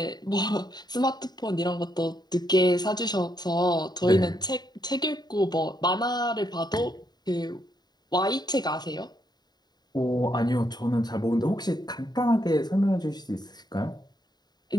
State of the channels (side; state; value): right; late; 0.20 ms